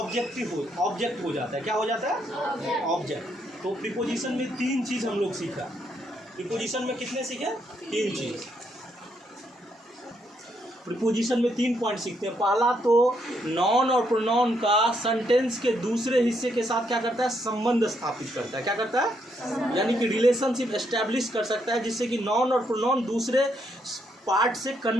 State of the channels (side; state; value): both; normal; correlation 0.75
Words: हो जाता है। क्या हो जाता है? ऑब्जेक्ट। तो प्रीपोजिशन में 3 चीज़ हम लोग सीखा। प्रीपोजिशन में कितने सीखे? 3 चीज़। प्रीपोजिशन में 3 पॉइंट सीखते हैं। पहला तो नाउन और प्रोनाउन का सेंटेंस के दूसरे हिस्से के साथ क्या करता है? संबंध स्थापित करता है। क्या करता है? यानी कि रिलेशनशिप एस्टैब्लिश कर सकता है, जिससे कि नाउन और प्रोनाउन दूसरे पार्ट से